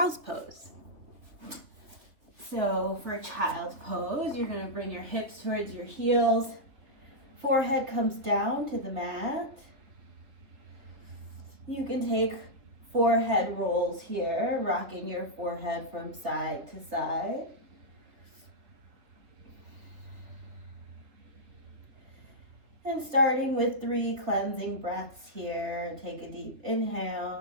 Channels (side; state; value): left; late; 3.5 ms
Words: pose. So for a child's pose, you're going to bring your hips towards your heels. Forehead comes down to the mat. You can take forehead rolls here, rocking your forehead from side to side. And starting with 3 cleansing breaths here, take a deep